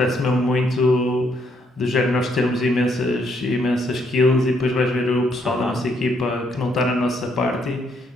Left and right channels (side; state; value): both; normal; correlation 0.72